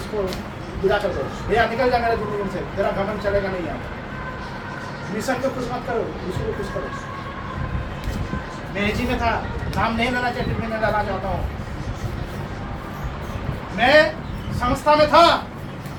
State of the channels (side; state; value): both; identical; correlation 1.00